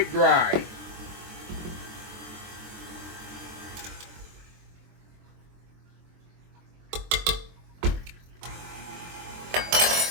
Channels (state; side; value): late; left; 23 ms